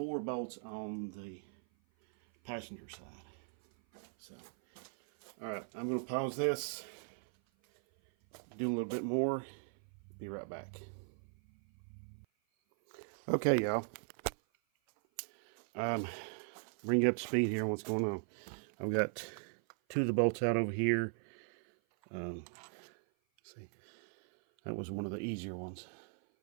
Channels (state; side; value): silent; left; 52 dB below the other